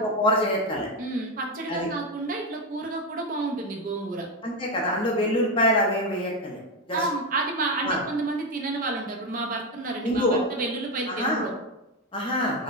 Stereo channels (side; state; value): both; normal; correlation 0.11